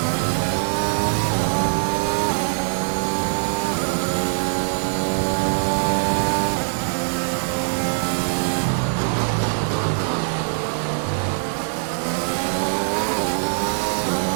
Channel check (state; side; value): silent; left; 63 dB below the other